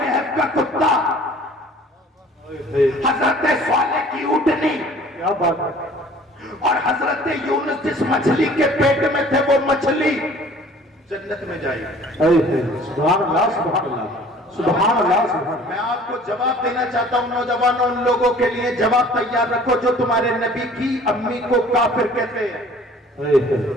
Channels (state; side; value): normal; both; correlation 0.51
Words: کا کتا، حضرت صالح کی اونٹنی، اور حضرت یونس جس مچھلی کے پیٹ میں تھے وہ مچھلی جنت میں جائے گی۔ سبحان اللہ، سبحان اللہ، سبحان اللہ، سبحان اللہ۔ میں آپ کو جواب دینا چاہتا ہوں نوجوانوں، ان لوگوں کے لیے جواب تیار رکھو جو تمہارے نبی کی امی کو کافر کہتے ہیں۔